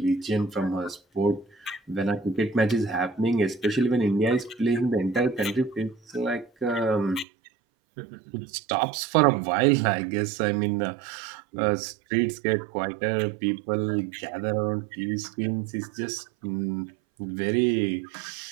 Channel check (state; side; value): drops out; left; at 7.2 s